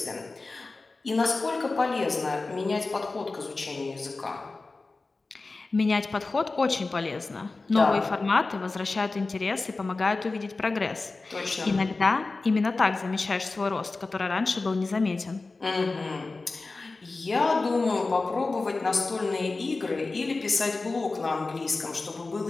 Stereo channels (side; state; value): right; quieter; 3.6 dB